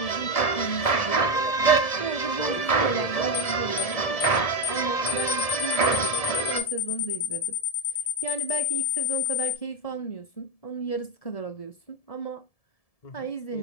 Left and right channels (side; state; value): right; late; 1.7 ms